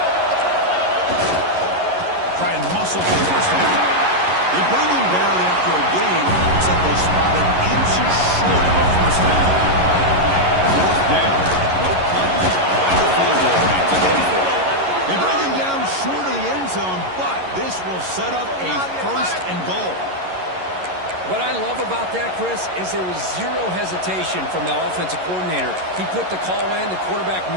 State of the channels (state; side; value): late; left; 11 ms